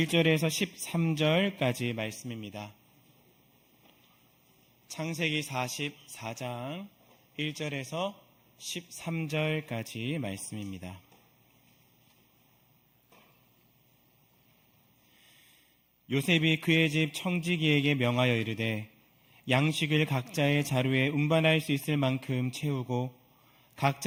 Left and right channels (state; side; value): identical; both; correlation 1.00